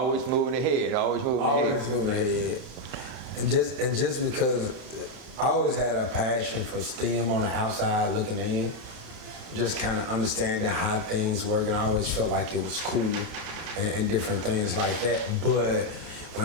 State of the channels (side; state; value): left; late; 31 ms